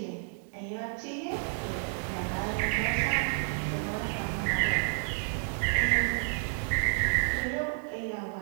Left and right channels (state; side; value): silent; left; 57 dB below the other